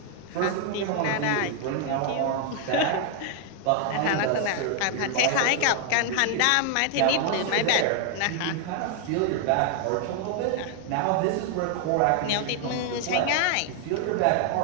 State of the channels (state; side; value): different; both; correlation 0.00